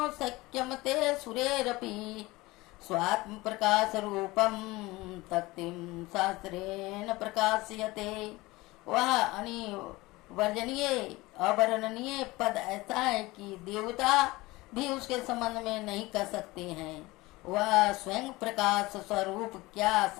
शक्यं ते सुरेरपि स्वात्मप्रकाशरूपं तक्तिं शास्त्रेण प्रकाश्यते। वह अनिवर्जनीय अवर्णनीय पद ऐसा है कि देवता भी उसके संबंध में नहीं कर सकते हैं। वह स्वयं प्रकाश स्वरूप क्या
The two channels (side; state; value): right; quieter; 20.9 dB